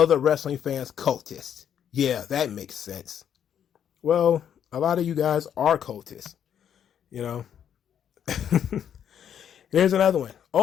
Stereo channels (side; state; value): right; quieter; 9.1 dB